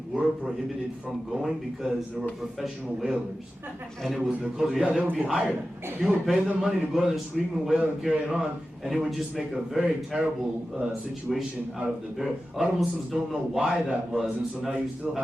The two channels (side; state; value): both; normal; correlation 0.93